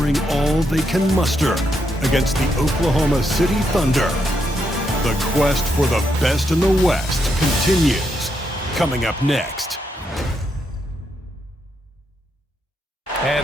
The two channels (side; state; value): both; normal; correlation 0.80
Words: all they can muster against the Oklahoma City Thunder. The quest for the best in the West continues. Coming up next.